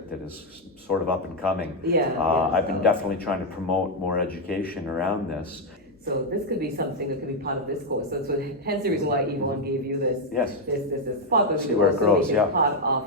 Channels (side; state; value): both; normal; correlation 0.03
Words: that is sort of up and coming. I've been definitely trying to promote more education around this. So this could be something that could be part of this course. So hence the reason why Yvonne gave you this. Yes. This part of See where it grows, yeah. part of